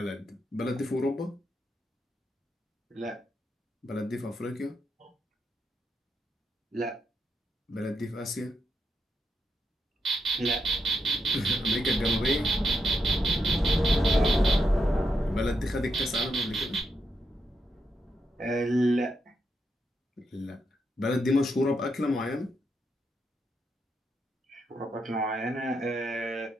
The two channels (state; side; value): normal; both; correlation 0.82